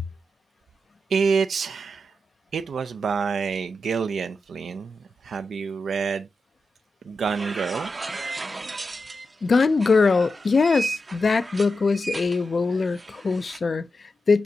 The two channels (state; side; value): normal; both; correlation 0.89